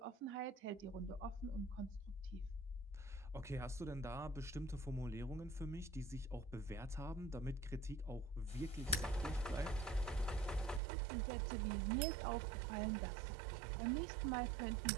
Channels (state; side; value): drops out; left; at 10.8 s